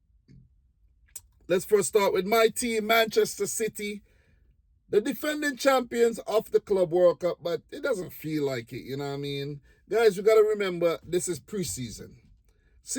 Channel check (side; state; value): both; identical; correlation 1.00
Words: Let's first start with my team, Manchester City, the defending champions of the Club World Cup, but it doesn't feel like it, you know what I mean? Guys, we got to remember, this is preseason.